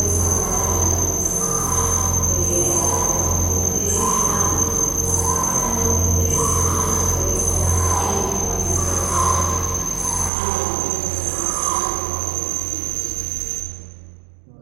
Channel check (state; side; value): drops out; left; at 10.3 s